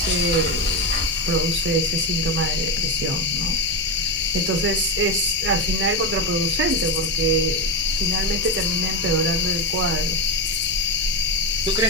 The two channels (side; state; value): both; normal; correlation 0.12